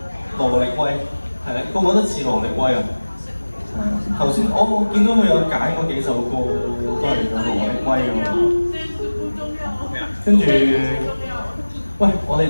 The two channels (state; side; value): inverted; both; correlation -1.00